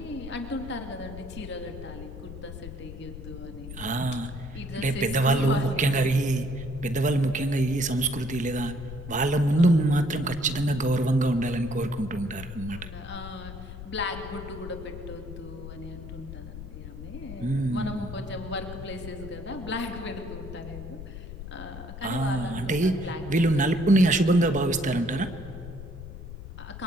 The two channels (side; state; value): left; noise; rumble, 11 dB below the sound